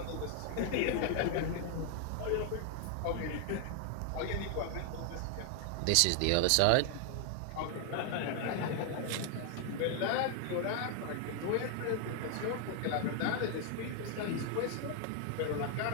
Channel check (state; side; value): different; both; correlation 0.00